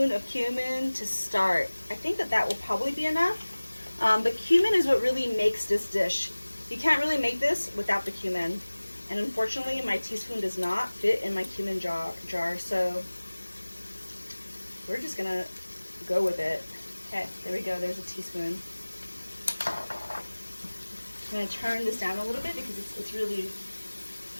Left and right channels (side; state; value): both; inverted; correlation -1.00